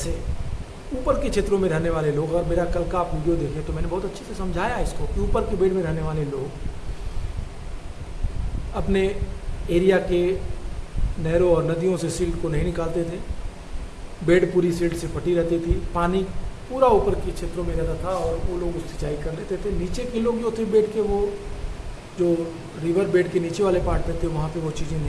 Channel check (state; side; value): identical; both; correlation 1.00